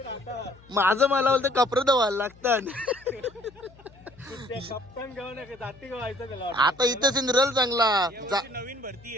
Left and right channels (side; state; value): left; noise; hum, 25 dB below the sound